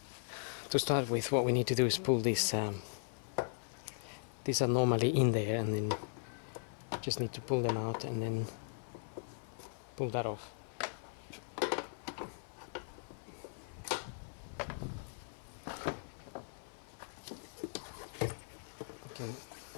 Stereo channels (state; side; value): silent; right; 52 dB below the other